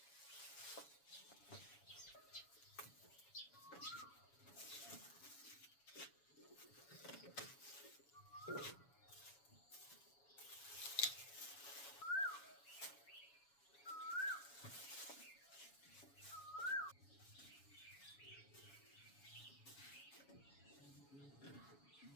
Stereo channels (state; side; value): late; right; 7.1 ms